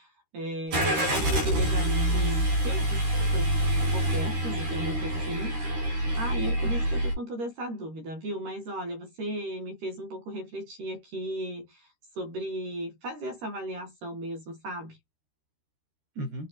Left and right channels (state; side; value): late; left; 13 ms